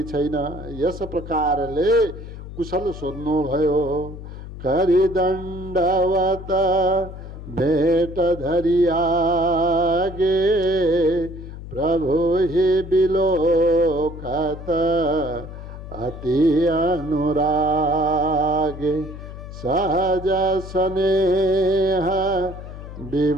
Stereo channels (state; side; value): noise; left; hum, 12 dB below the sound